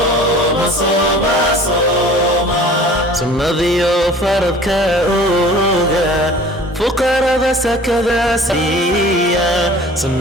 صوم صوم سنذيو فرض كأوغا فقراء سكذا سيا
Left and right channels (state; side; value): normal; both; correlation 0.46